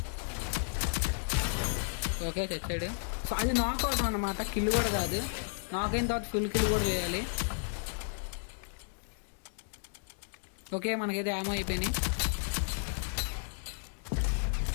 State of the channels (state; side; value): silent; right; digital silence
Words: ఓకే, తెచ్చాడు. సో అది నాక్ అవుతాం అనమాట, కిల్ కూడా కాదు. నాక్ అయిన తర్వాత ఫుల్ కిల్ కూడా చేయాలి. ఓకే, మనకైతే యామో అయిపోయినాయి.